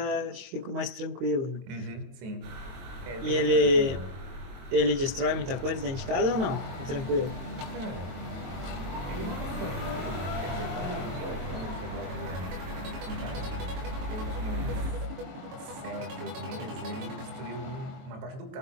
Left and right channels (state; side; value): late; left; 23 ms